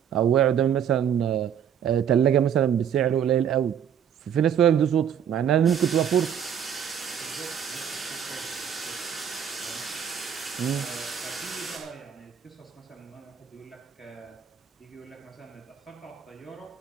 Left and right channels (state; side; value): quieter; left; 8.7 dB